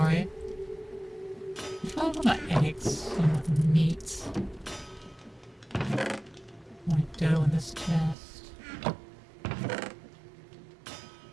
There's probably a lot of eggs and meat. More dough in this chest.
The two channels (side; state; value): left; drops out; at 8.2 s